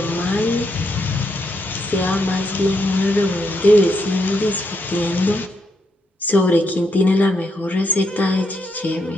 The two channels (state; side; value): normal; both; correlation 0.79